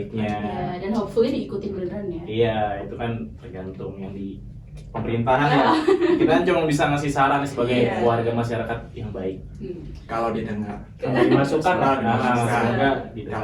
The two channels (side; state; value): both; identical; correlation 1.00